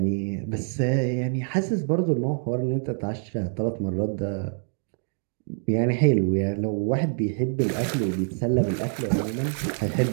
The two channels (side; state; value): left; silent; 59 dB below the other